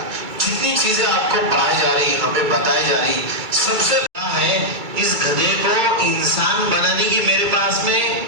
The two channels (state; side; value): late; left; 2.3 ms